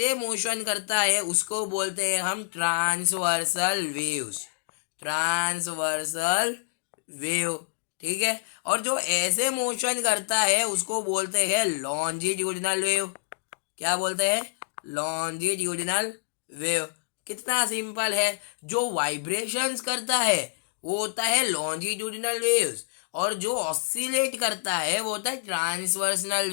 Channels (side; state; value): right; silent; digital silence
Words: मोशन करता है उसको बोलते हैं हम ट्रांसवर्सल वेव्स, ट्रांसवर्सल वेव। ठीक है, और जो ऐसे मोशन करता है उसको बोलते हैं लॉन्जिट्यूडिनल वेव। क्या बोलते हैं, लॉन्जिट्यूडिनल वेव। कितना सिंपल है, जो वाइब्रेशंस करता है वो होता है लॉन्जिट्यूडिनल वेव्स, और जो ऑसिलेट करता है वो होता है ट्रांसवर्सनल